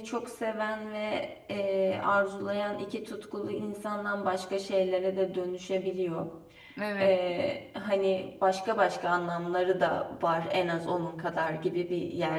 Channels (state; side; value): identical; both; correlation 1.00